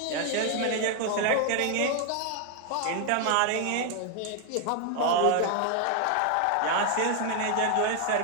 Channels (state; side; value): different; both; correlation 0.00